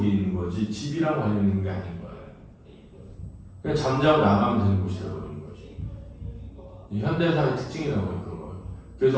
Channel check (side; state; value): both; identical; correlation 1.00